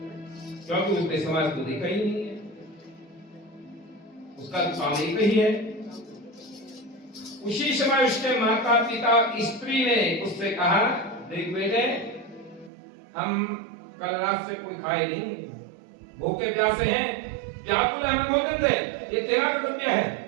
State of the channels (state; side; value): drops out; left; at 12.7 s